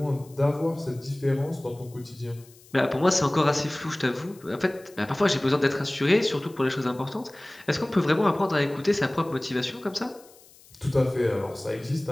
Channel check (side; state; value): left; noise; hiss, 25 dB below the sound